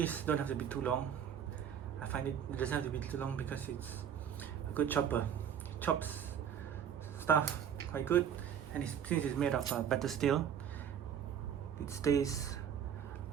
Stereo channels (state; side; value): quieter; left; 8.7 dB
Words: don't have to be too long. I find it doesn't have to be too long because it's a good chopper. It chops stuff quite good, and since it's made of better steel, it stays